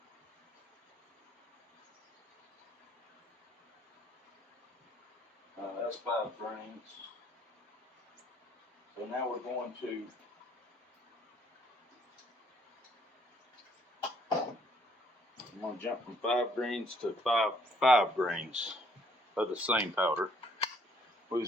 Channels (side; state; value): both; normal; correlation 0.65